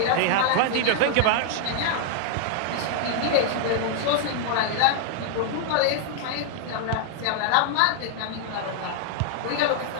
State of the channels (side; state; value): both; different; correlation -0.01